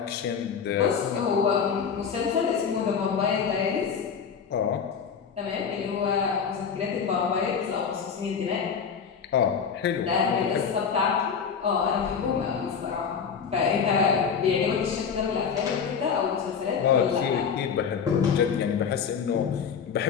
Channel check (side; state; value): right; quieter; 6.6 dB